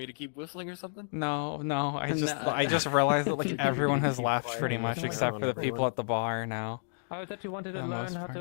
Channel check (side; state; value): right; silent; digital silence